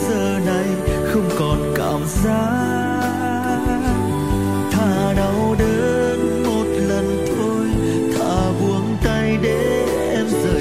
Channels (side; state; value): both; identical; correlation 1.00